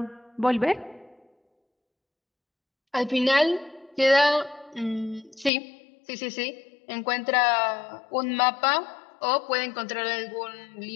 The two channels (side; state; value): right; drops out; at 5.5 s